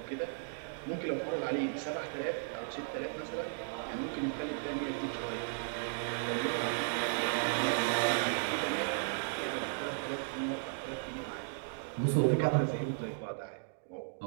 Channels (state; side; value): silent; left; digital silence